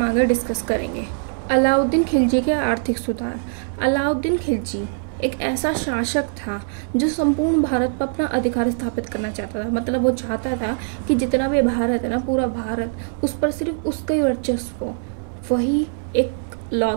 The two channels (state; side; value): silent; left; 64 dB below the other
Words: आगे डिस्कस करेंगे। अलाउद्दीन खिलजी के आर्थिक सुधार। अलाउद्दीन खिलजी एक ऐसा शासक था जो संपूर्ण भारत पर अपना अधिकार स्थापित करना चाहता था। मतलब वो चाहता था कि जितना भी भारत है ना, पूरा भारत, उस पर सिर्फ उसका ही वर्चस्व हो, वही एक